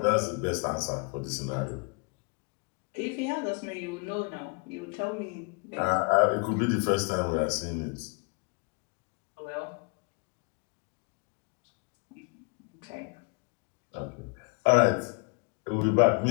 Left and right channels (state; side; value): quieter; right; 33.1 dB